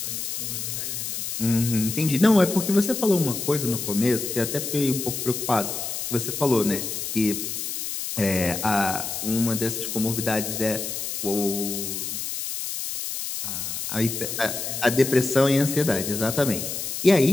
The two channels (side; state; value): left; noise; hiss, 4 dB below the sound